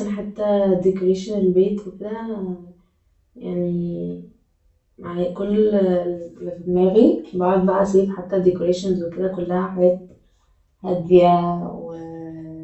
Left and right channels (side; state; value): both; identical; correlation 1.00